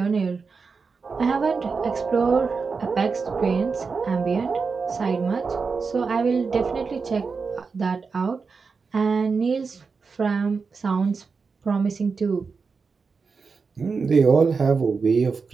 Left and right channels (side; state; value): left; quieter; 4.9 dB